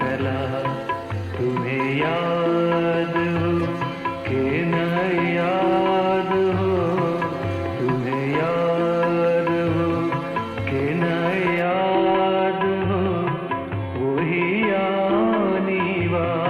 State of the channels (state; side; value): identical; both; correlation 1.00